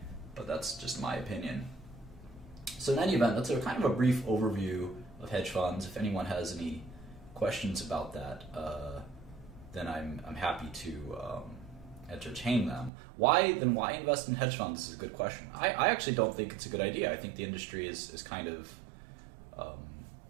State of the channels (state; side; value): drops out; left; at 12.9 s